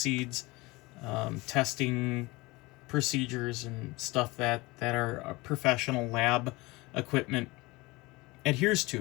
testing procedures and stuff that our professional lab equipment adheres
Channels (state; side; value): quieter; right; 22.8 dB